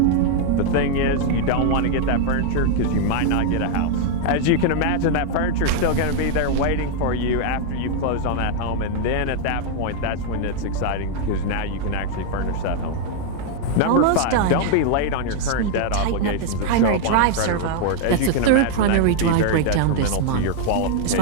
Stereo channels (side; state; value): both; different; correlation 0.00